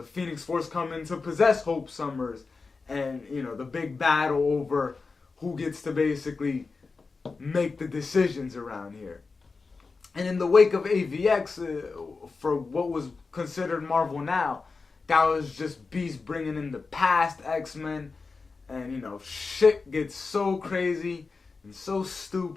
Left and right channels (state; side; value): quieter; right; 4.3 dB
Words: Phoenix Force coming to possess Hope Summers, and, the big battle over who gets to basically make the decisions around here. And in the wake of AVX, for what was considered Marvel now, that was just Beast bringing in the past X-Men. And, you know, shit gets so crazy and so